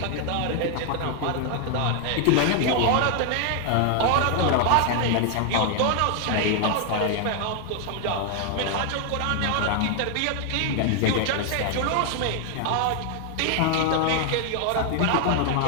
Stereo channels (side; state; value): both; different; correlation 0.00